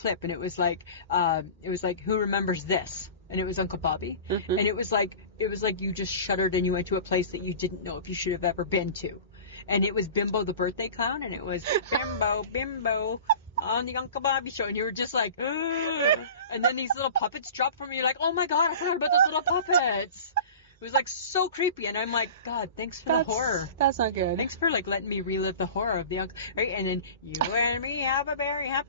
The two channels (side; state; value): both; inverted; correlation -0.37